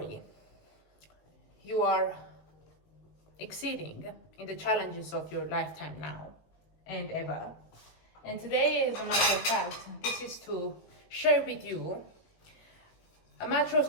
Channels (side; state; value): right; late; 19 ms